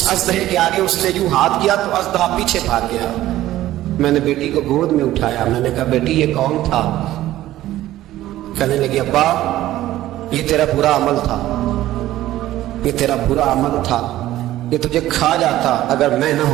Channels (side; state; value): left; quieter; 14.6 dB